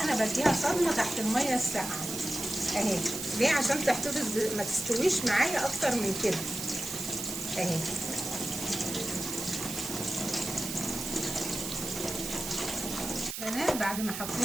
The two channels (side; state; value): right; noise; hiss, 6 dB below the sound